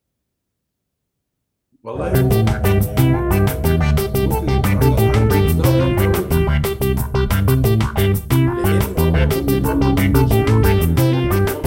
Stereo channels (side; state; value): both; identical; correlation 1.00